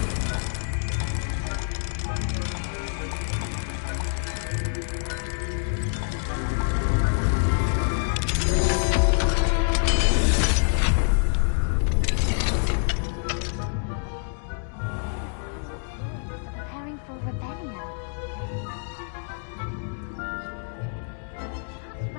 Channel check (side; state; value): right; silent; 61 dB below the other